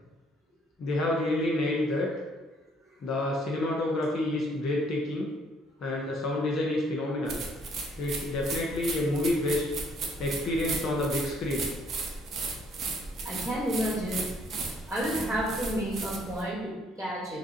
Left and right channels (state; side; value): normal; both; correlation 0.65